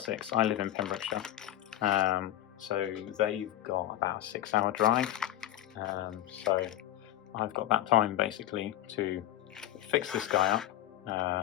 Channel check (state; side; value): quieter; right; 13.2 dB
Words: I live in Pembrokeshire, so they've got about a 6-hour drive. So I've got that time basically to fix this guy